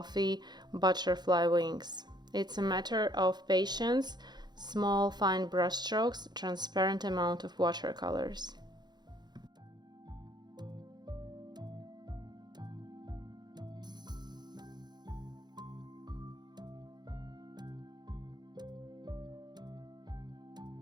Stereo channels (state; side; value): late; left; 0.21 ms